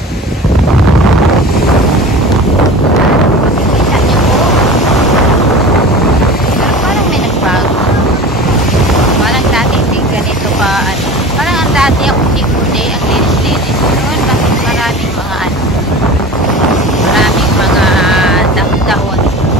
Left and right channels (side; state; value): both; normal; correlation 0.36